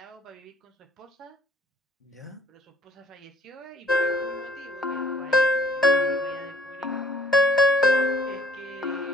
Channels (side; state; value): both; normal; correlation 0.58